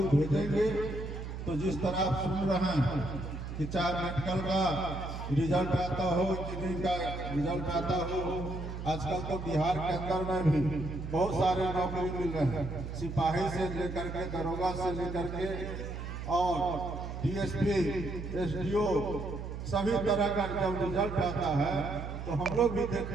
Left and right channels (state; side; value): noise; right; hum, 7 dB below the sound